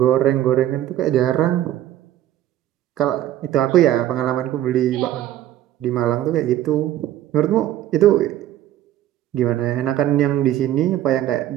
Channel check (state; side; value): quieter; left; 12.9 dB